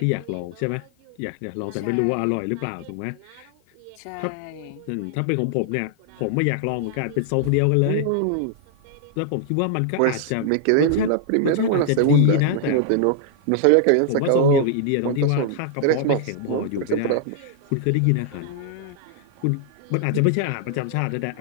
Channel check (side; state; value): both; different; correlation -0.01